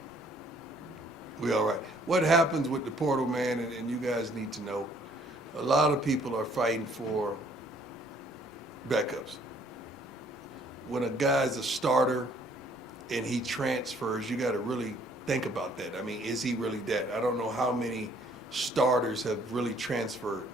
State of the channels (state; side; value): normal; both; correlation 0.61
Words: We all right. What happens with the portal, man, and you guys need to know, a lot of people are fighting for backups. When a guy's a starter and he transfers, you got to really think about that. I mean, is he really that? I don't know how many starters have really transferred